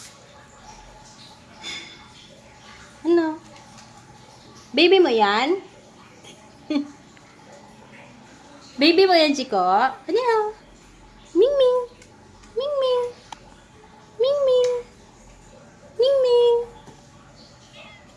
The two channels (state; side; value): identical; both; correlation 1.00